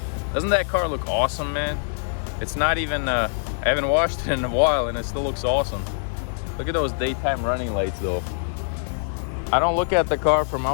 doesn't that car look awesome, man? It's not even, I haven't washed it in a while and it still looks awesome. Look at those daytime running lights though. I don't look at the car from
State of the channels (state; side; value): silent; right; digital silence